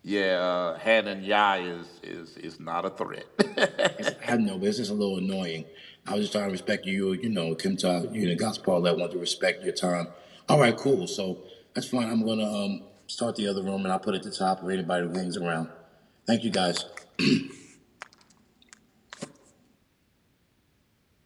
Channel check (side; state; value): both; identical; correlation 1.00